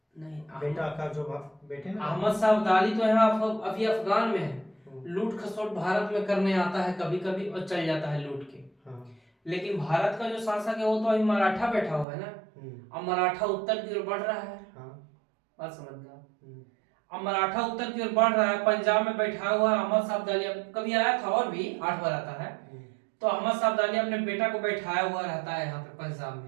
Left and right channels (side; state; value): left; drops out; at 12.1 s